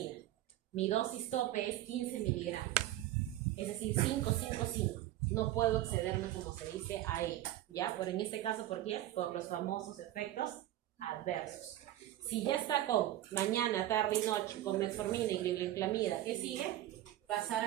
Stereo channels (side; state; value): left; quieter; 14.1 dB